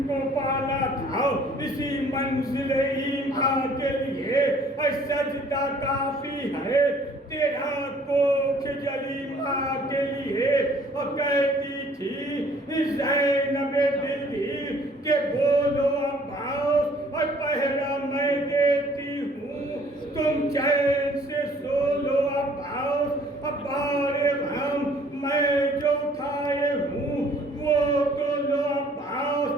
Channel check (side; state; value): both; normal; correlation 0.57